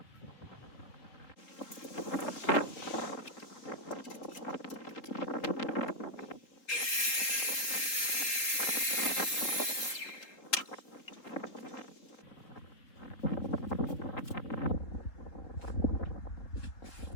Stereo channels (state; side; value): late; right; 3.8 ms